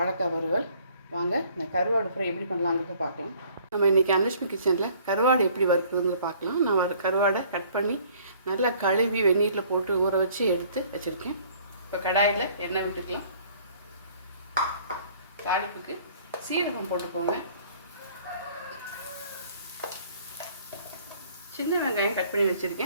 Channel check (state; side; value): inverted; both; correlation -0.57